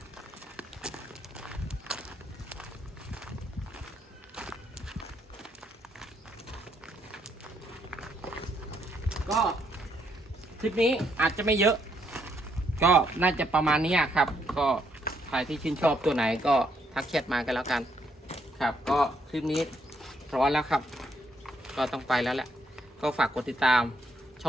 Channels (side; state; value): both; normal; correlation 0.73